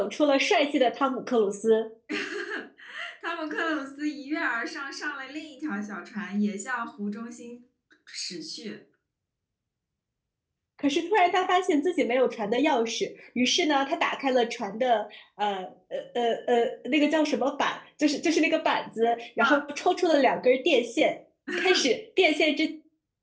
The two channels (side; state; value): both; identical; correlation 1.00